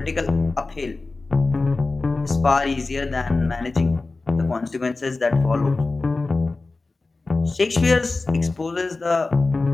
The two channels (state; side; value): quieter; right; 3.5 dB